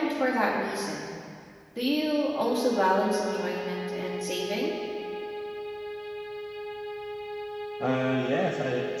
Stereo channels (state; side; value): identical; both; correlation 1.00